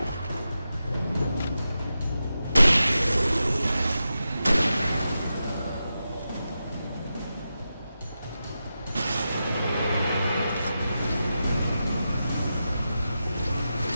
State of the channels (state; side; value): inverted; both; correlation -0.90